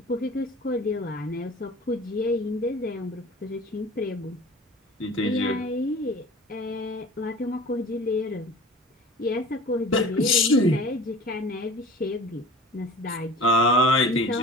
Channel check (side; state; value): both; normal; correlation 0.41